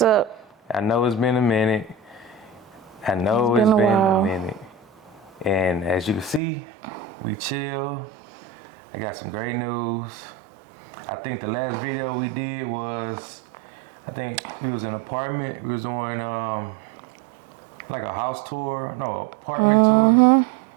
I know it's been a minute. It's been a minute. And as you can see, we chill. I got some great news. I think the last video we did was, I think we was in an apartment. We was doing like a house tour, no, apartment tour.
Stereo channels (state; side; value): drops out; left; at 6.4 s